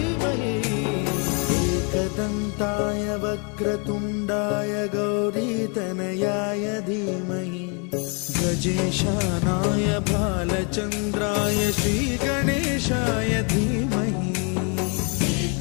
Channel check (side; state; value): right; quieter; 35.9 dB